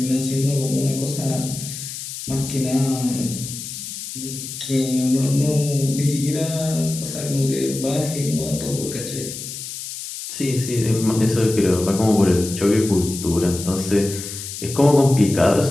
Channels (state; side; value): noise; left; hiss, 9 dB below the sound